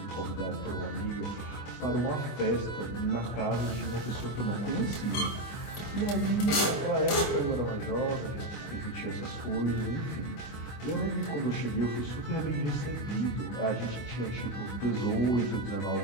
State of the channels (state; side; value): late; right; 25 ms